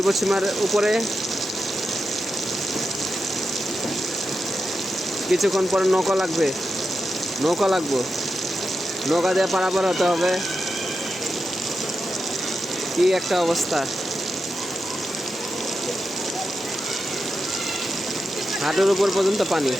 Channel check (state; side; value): normal; both; correlation 0.88